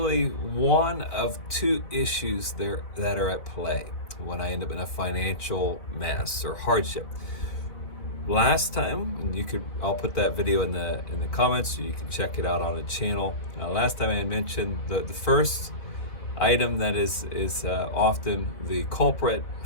one of two issues there that are at play when I end up in a financial mess or hardship. Last time, and I'll put that video in the comments so you can check it out on the channel. Last time I mentioned the first item that is often the culprit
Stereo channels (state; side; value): late; right; 4.1 ms